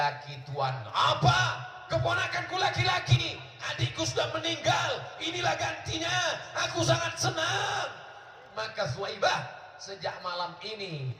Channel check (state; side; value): identical; both; correlation 1.00